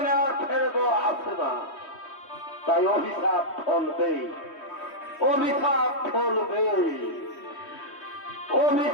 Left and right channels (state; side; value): late; right; 3.2 ms